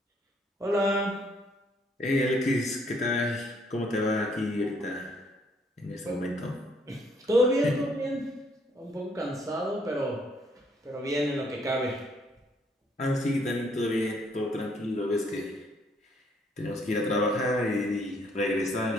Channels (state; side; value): normal; both; correlation 0.67